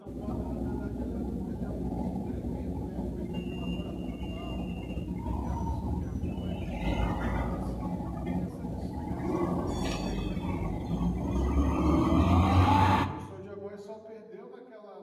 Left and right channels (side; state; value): both; identical; correlation 1.00